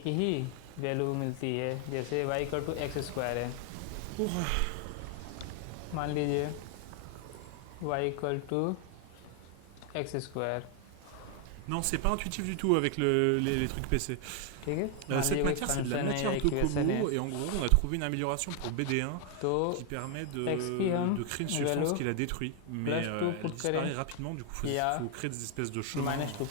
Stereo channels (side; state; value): both; different; correlation 0.00